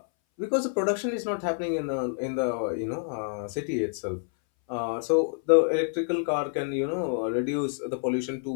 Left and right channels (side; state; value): right; silent; 60 dB below the other